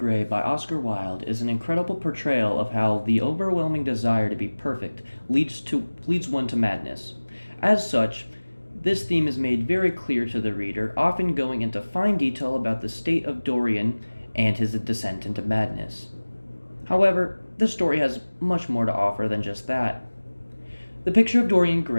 by Oscar Wilde is an incredible portrayal of how the overwhelming desire to be perfect leads one to madness. As such, this theme is made very clear to the reader, often going into fine detail about the state of Dorian and his descent into madness. However, this story has much more to offer than just that. The Picture of Dorian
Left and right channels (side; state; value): both; inverted; correlation -1.00